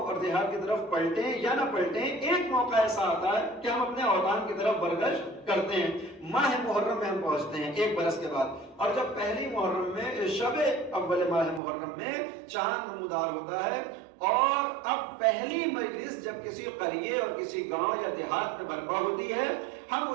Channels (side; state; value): left; drops out; at 11.6 s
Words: اور دیہات کی طرف پلٹیں یا نہ پلٹیں، ایک موقع ایسا آتا ہے کہ ہم اپنے اوطان کی طرف برگشت کرتے ہیں۔ ماہ محرم میں ہم پہنچتے ہیں ایک برس کے بعد، اور جب پہلی محرم میں شب اول ماہ محرم میں چاند نمودار ہوتا ہے، اور اب پہلی مجلس جب کسی قریے اور کسی گاؤں یا دیہات میں برپا ہوتی ہے، ہم